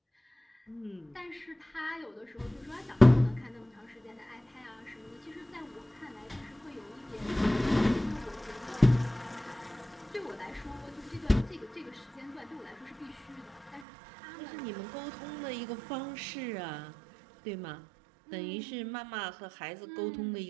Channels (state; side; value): drops out; left; at 13.9 s